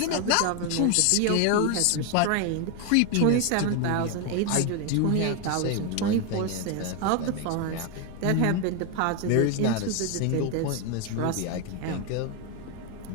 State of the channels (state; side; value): different; both; correlation 0.01